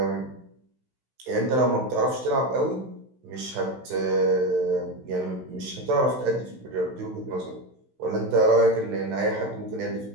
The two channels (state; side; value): late; left; 16 ms